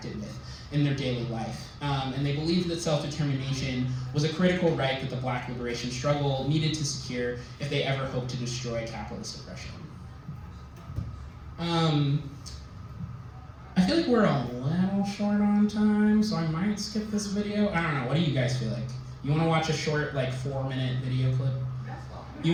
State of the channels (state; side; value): identical; both; correlation 1.00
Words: with in their daily life. And they believed that self-determination was a critical right that the Black liberation struggle needed to secure if they ever hoped to destroy capitalist oppression. I feel like we're a little short on time, so I might skip this video. I don't know, what do you guys feel like? You want to watch a short, 4-minute video clip? You